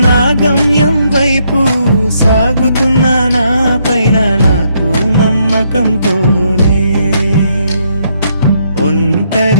నా గమ్యం వైపు సాగుతున్న నా పైన నాకు నమ్మకంతోనే,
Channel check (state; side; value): inverted; both; correlation -0.74